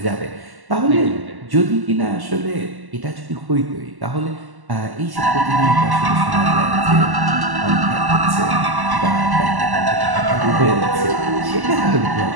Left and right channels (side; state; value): left; late; 1.1 ms